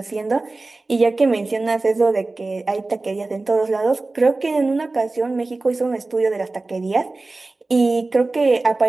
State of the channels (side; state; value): left; quieter; 3.3 dB